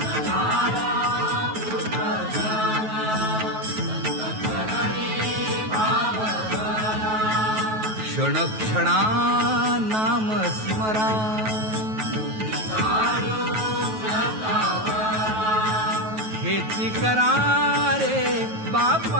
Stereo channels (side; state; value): left; late; 9.3 ms